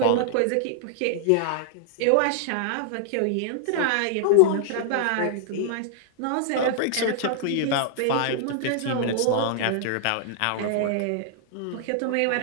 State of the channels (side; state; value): both; different; correlation -0.01